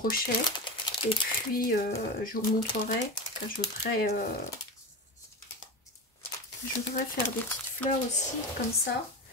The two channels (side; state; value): both; normal; correlation 0.23